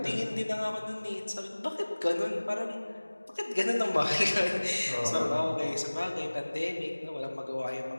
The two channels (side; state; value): both; inverted; correlation -1.00